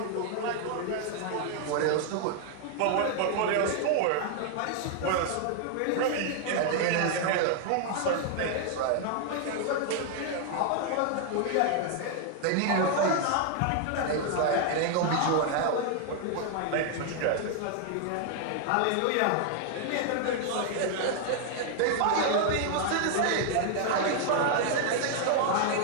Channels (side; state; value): both; different; correlation 0.00